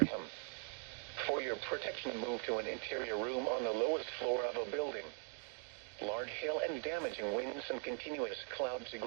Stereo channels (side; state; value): left; quieter; 38.7 dB